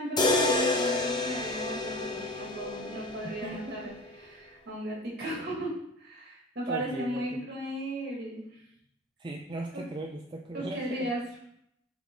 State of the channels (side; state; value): both; normal; correlation 0.36